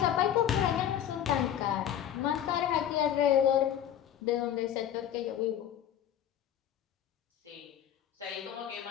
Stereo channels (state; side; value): quieter; right; 10.3 dB